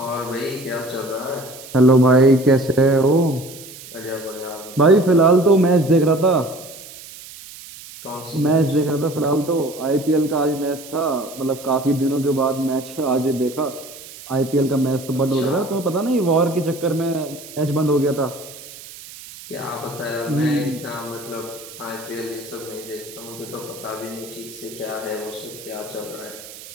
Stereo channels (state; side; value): noise; right; hiss, 16 dB below the sound